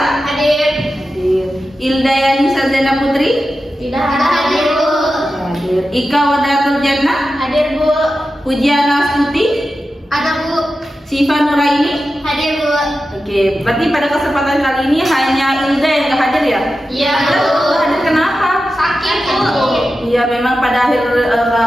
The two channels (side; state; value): both; normal; correlation 0.92